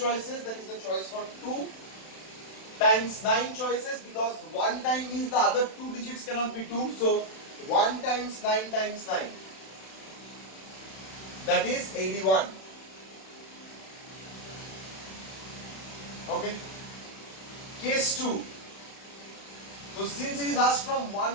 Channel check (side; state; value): right; late; 32 ms